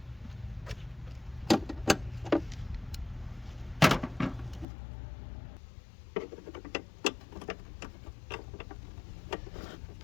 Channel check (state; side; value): drops out; right; at 4.7 s